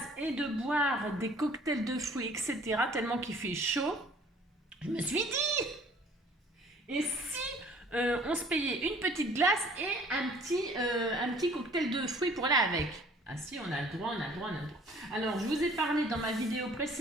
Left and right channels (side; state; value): both; normal; correlation 0.54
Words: et de boire des cocktails de fruits, etc., tellement qu'il fait chaud, je me suis dit, et si on se payait une petite glace et un petit cocktail de fruits pour aller avec? Ah si, on a le droit. Alors, je vous ai parlé dans ma vidéo